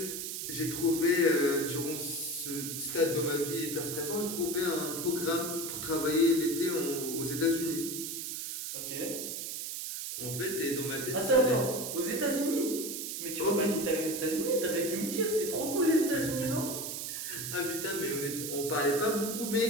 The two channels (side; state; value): right; noise; hiss, 5 dB below the sound